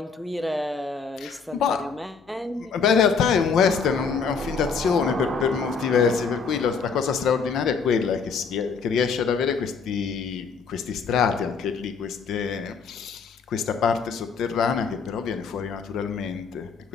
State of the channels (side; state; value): right; quieter; 5.5 dB